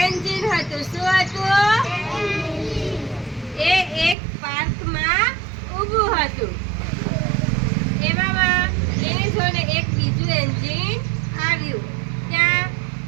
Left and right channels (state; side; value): drops out; left; at 4.2 s